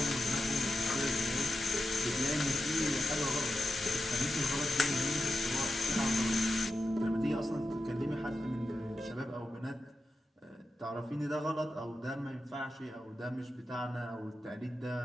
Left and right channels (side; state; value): both; normal; correlation 0.89